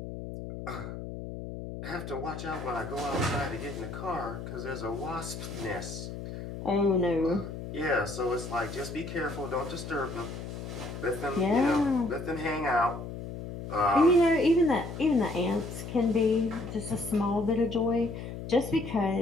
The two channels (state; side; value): noise; left; hum, 8 dB below the sound